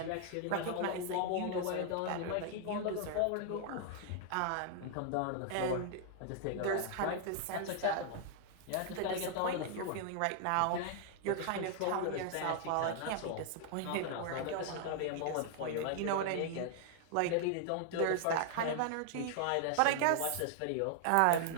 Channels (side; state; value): both; different; correlation 0.00